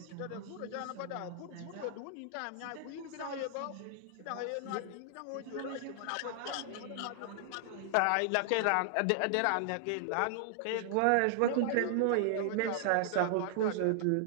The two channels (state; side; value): different; both; correlation -0.01